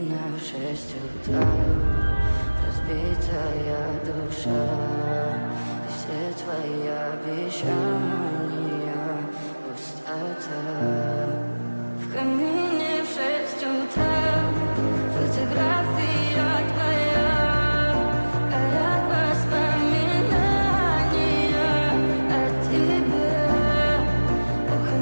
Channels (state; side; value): inverted; both; correlation -1.00